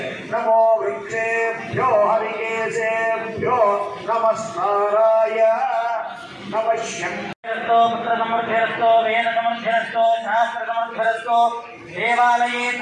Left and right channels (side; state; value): both; identical; correlation 1.00